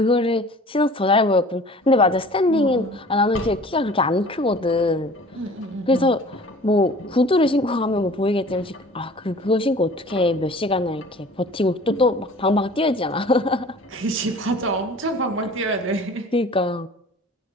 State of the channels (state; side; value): normal; both; correlation 0.46